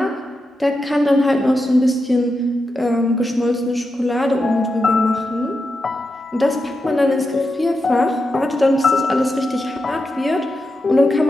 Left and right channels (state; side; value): normal; both; correlation 0.88